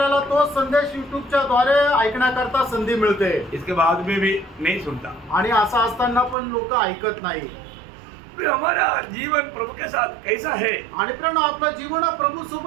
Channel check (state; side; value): drops out; left; at 6.4 s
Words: तो संदेश YouTubeच्या द्वारे ऐकण्याकरता संधी मिळते. इसके बाद में भी नहीं सुनता। आणि असं असताना पण लोक ऐकत नाही. हमारा जीवन प्रभु के साथ कैसा है? आणि पण आपलं जीवन प्रभू